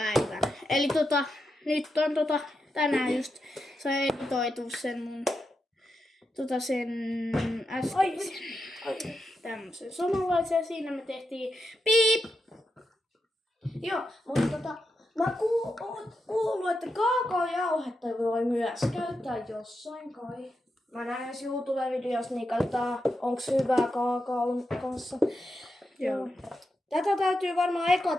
Eli nyt on tänään just se editoitu sen mun sen äskeisen tämmösen samanlaisen. Siinä me tehtiin piip. Joo, mutta mä kuullut, että kaakaojauhetta voi myös käyttää jossain kai. Mä näen jos YouTube-videossa, niin katsotaan, onks hyvää kaakaon kanssa. Joo. Tätä täytyy varmaan eka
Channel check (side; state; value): both; normal; correlation 0.86